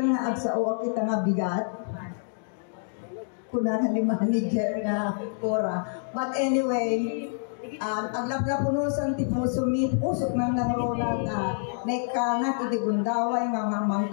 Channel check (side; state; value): right; silent; digital silence